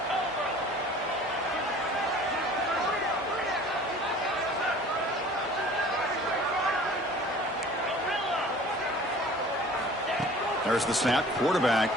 There's the snap.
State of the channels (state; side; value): normal; both; correlation 0.47